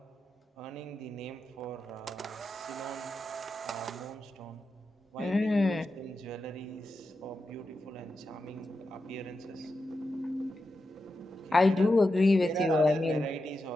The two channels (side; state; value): both; normal; correlation 0.89